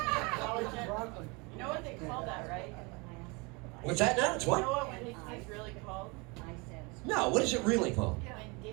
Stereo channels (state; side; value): quieter; left; 28.4 dB